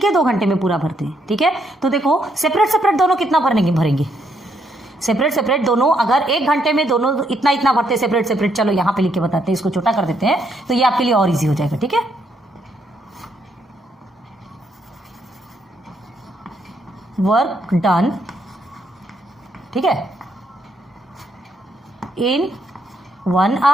2 घंटे में पूरा भरते हैं। ठीक है, तो देखो सेपरेट दोनों कितना भरेंगे? सेपरेट दोनों अगर 1 घंटे में दोनों इतना भरते हैं सेपरेट, चलो यहाँ पे लिख के बताते हैं, इसको छोटा कर देते हैं तो ये आपके लिए और इजी हो जाएगा। ठीक है, वर्क डन, ठीक है, इन 1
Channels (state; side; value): normal; both; correlation 0.74